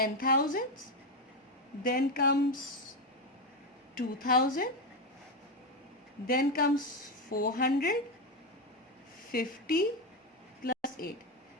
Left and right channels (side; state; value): both; normal; correlation 0.10